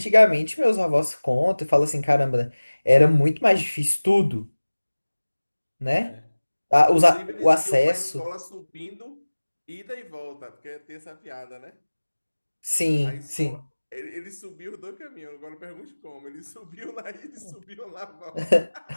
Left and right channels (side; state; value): both; inverted; correlation -1.00